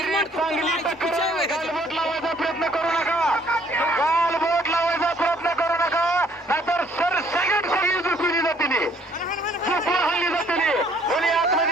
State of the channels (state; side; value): normal; both; correlation 0.62